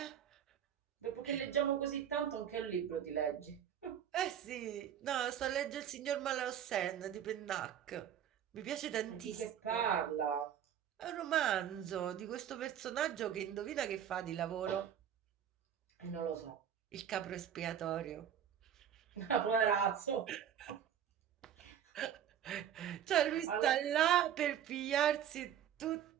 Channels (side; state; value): left; quieter; 9.5 dB